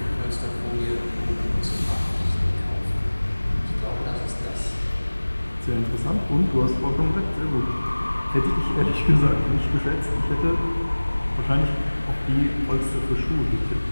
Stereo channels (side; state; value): both; inverted; correlation -1.00